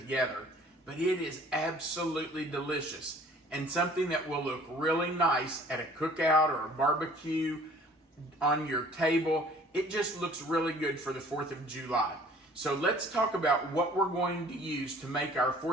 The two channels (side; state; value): both; normal; correlation 0.52